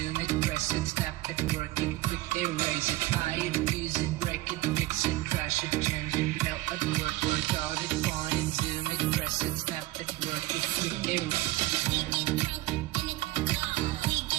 it, press it, snap it, work it, quick erase it, hide it, use it, break it, fix it, trash it, change it, melt it, work hard it, point it, zoom it, press it, snap it, work it, quick erase it.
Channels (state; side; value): quieter; left; 18.1 dB